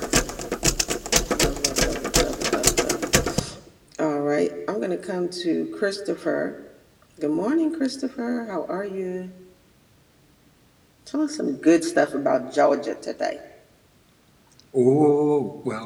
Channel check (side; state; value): both; identical; correlation 1.00